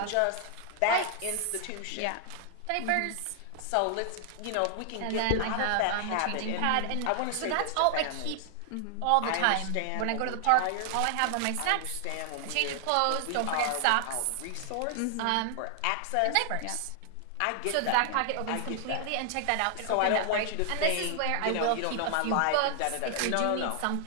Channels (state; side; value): different; both; correlation 0.00